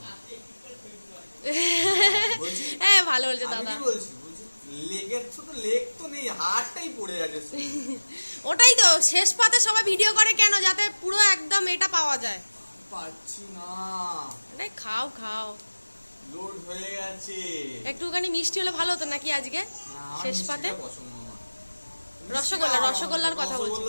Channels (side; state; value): both; inverted; correlation -1.00